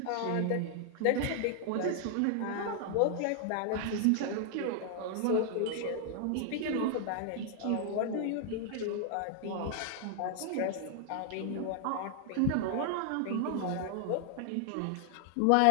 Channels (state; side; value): different; both; correlation 0.00